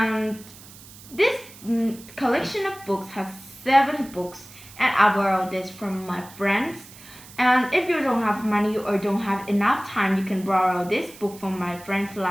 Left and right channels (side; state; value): right; noise; hiss, 19 dB below the sound